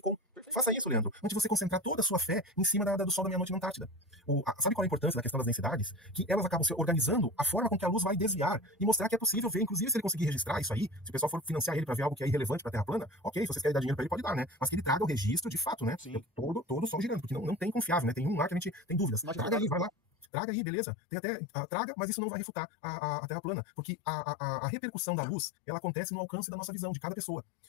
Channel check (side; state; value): right; drops out; at 20.2 s